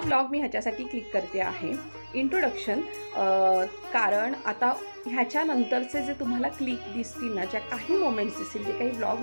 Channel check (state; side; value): inverted; both; correlation -1.00